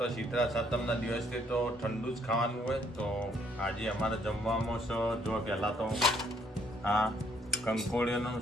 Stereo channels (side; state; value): both; normal; correlation 0.67